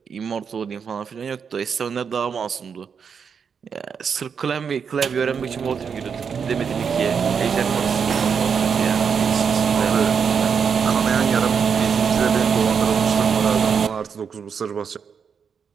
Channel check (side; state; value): left; quieter; 6.6 dB